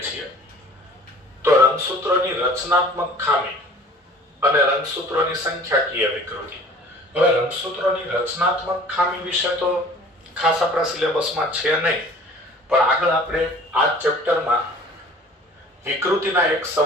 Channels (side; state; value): both; normal; correlation 0.47